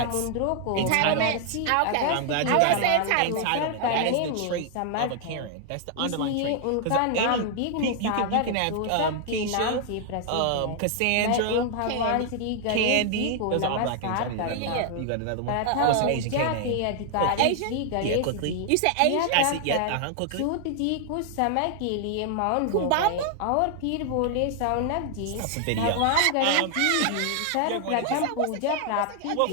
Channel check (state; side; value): different; both; correlation 0.00